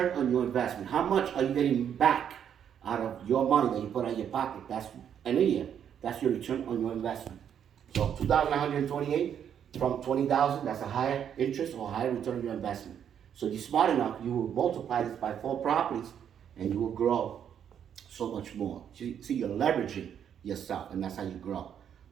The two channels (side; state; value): left; quieter; 8.8 dB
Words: on your investment. How much are you getting back out of your money that you put in your pocket? That's in a year. That's your return on your investment. So 2,128 from 20,000, that's a higher interest or higher return on your investment. So if you're smart enough, you will multiply this by 4 properties and you will grow so much more. See, you're leveraging yourself, and that's how you grow.